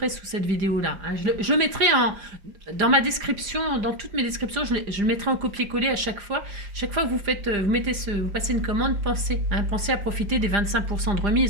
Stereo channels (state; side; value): late; left; 4.9 ms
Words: sous cette vidéo-là. Je mettrai dans ma description, dans toutes mes descriptions, je le mettrai en copier-coller à chaque fois. Chaque fois que vous passez une commande, pensez à profiter des 25% de